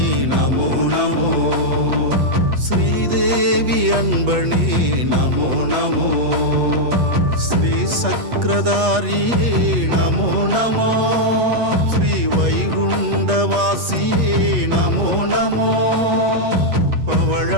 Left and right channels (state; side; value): late; left; 8.3 ms